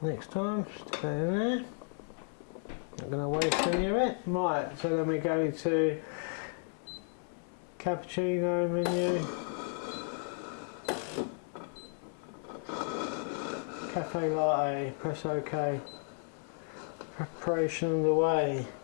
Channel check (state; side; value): silent; right; 55 dB below the other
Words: next time. Stick that in there. Not going to waste any of it. Right, so then we go to Cappuccino menu, Cafe Latte, press OK, preparation underway.